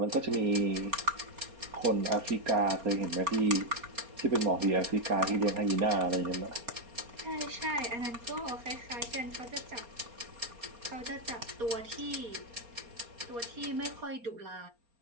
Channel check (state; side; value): late; left; 4.3 ms